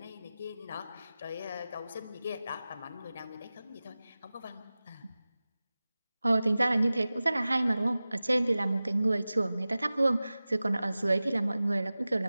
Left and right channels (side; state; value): both; inverted; correlation -0.97